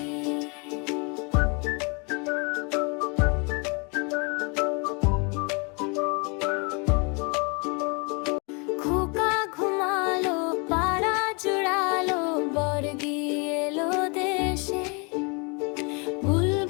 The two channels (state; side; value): quieter; right; 33.0 dB